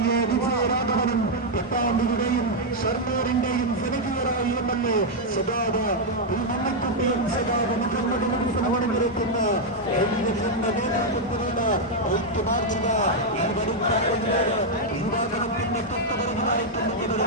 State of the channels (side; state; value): both; normal; correlation -0.01